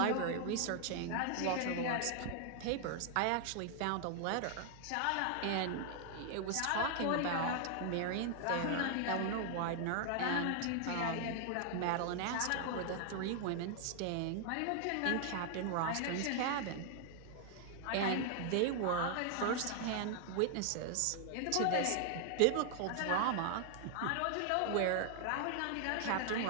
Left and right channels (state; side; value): different; both; correlation 0.00